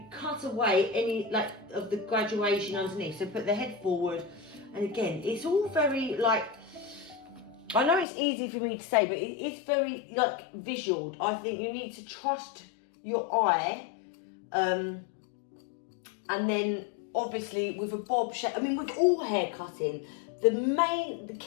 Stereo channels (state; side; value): drops out; right; at 8.1 s